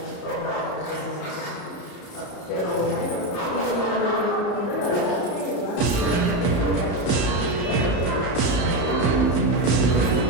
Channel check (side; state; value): right; late; 34 ms